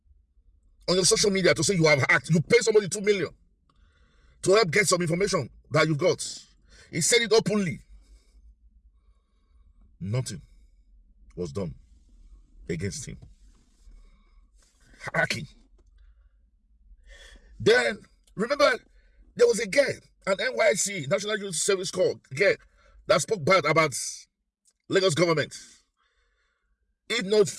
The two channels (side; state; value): both; identical; correlation 1.00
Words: on your social media to say you have hacked. You pay somebody 2 million to help get some information that you've got. He said it openly. Nothing was done against him. Hacking. Then, remember, there was a girl, an NYC, National Youth Service Corps, girl, that spoke bad about Lagos government. If not